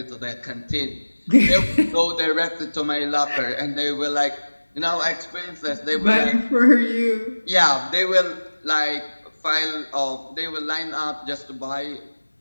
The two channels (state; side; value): inverted; both; correlation -1.00